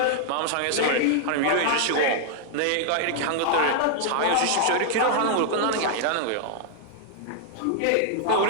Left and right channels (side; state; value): both; different; correlation 0.00